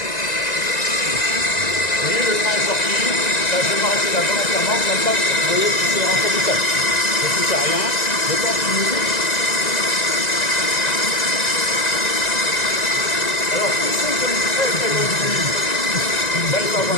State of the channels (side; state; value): right; late; 1.9 ms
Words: voyez, le train est sorti, là, je vais m'arrêter là volontairement, comme ça, vous voyez, c'est rentré tout seul. Je ne touche à rien, je continue. Alors, pour ceux qui ont une très très bonne vue, là, il faut